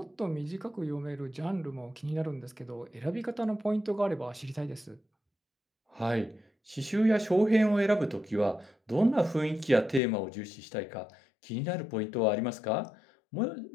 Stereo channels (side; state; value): right; drops out; at 10.0 s